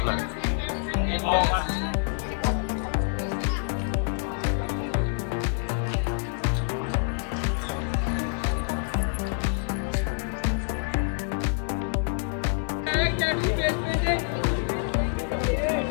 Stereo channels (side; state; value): right; silent; 58 dB below the other